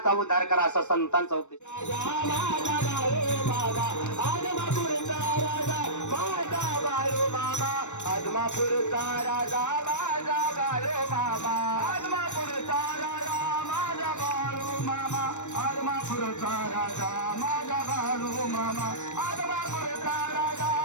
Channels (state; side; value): late; right; 0.84 ms